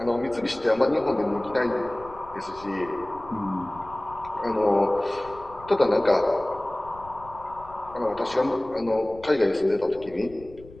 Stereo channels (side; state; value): left; noise; rumble, 20 dB below the sound